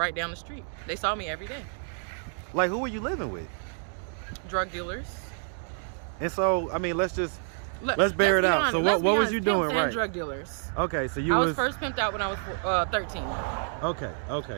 down the street. They saw me every day. Like, who were you living with? Drug dealers. And so, I mean, let's bear it out. So what was you doing, Pimps and right? drug dealers. Okay, so I was first pimped out when I was 13.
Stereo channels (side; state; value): left; silent; 59 dB below the other